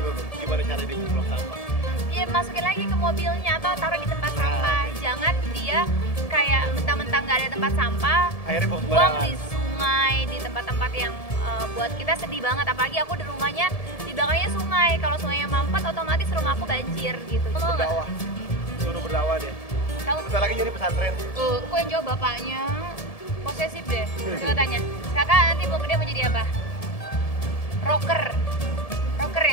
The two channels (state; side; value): late; right; 1.7 ms